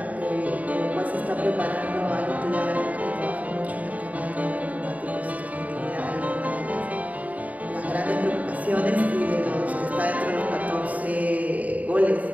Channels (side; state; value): left; late; 0.071 ms